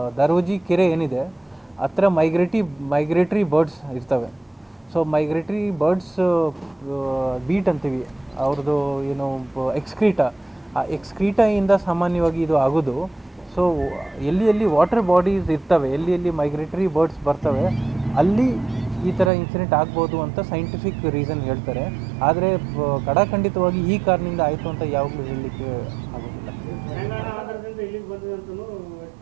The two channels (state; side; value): drops out; left; at 19.3 s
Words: ದರೋಜಿ ಕೆರೆ ಏನಿದೆ ಹತ್ರ ಮೈಗ್ರೇಟ್ರಿ ಬರ್ಡ್ಸ್ ಇರ್ತವೆ. ಸೊ ಮೈಗ್ರೇಟ್ರಿ ಬರ್ಡ್ಸ್ ಬೀಟ್ ಅಂತೀವಿ, ಅವ್ರದ್ದು ಏನು ಎಕ್ಸ್ಕ್ರೀಟಾ, ಆ ಎಕ್ಸ್ಕ್ರೀಟಾಯಿಂದ ಸಾಮಾನ್ಯವಾಗಿ ಇದು ಆಗೋದು. ಸೊ ಎಲ್ಲಿ ವಾಟರ್ ಬಾಡೀಸ್ ಇರ್ತವೆ, ಎಲ್ಲಿ ಮೈಗ್ರೇಟರಿ ಬರ್ಡ್ಸ್ ಬರ್ತವೆ, ಅಲ್ಲಿ ಈ ಥರ ಇನ್ಸಿಡೆಂಟ್ ಆಗ್ಬೋದು ಅಂತ ಸೈಂಟಿಫಿಕ್ ರೀಸನ್ ಹೇಳ್ತಾರೆ. ಆದರೆ ಖಡಾಖಂಡಿತವಾಗಿ ಈ ಕಾರಣದಿಂದ ಆಯಿತು ಅಂತ ಯಾವಾಗಲೂ ಹೇಳಲಿಕ್ಕೆ ಆಗೋದಿಲ್ಲ.